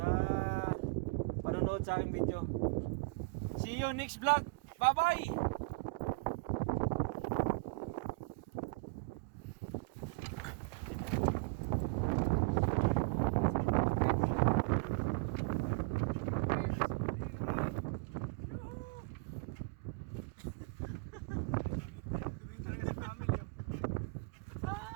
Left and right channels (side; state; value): left; quieter; 28.0 dB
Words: panonood sa aking video. See you next vlog. Bye-bye!